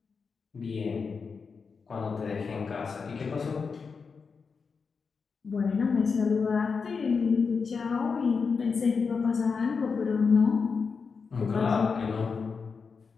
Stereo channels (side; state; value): right; quieter; 5.3 dB